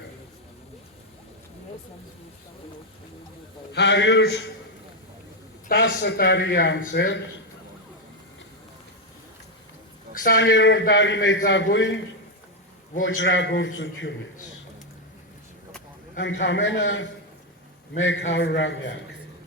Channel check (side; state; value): both; normal; correlation 0.03